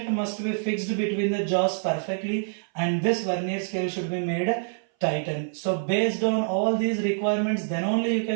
must be fixed between the jaws perfectly, and this vernier scale should be made tighten. So based on all these requirements, then only you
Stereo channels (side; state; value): left; silent; 59 dB below the other